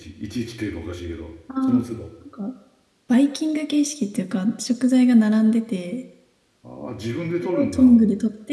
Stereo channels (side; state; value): both; identical; correlation 1.00